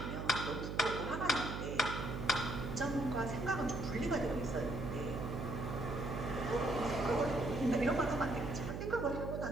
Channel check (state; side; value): noise; right; hum, 4 dB below the sound